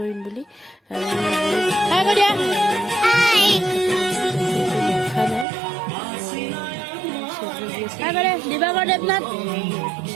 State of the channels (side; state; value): left; drops out; at 5.5 s